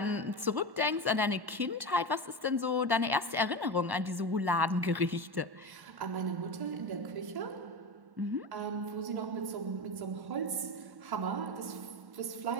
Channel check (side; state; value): left; late; 1.1 ms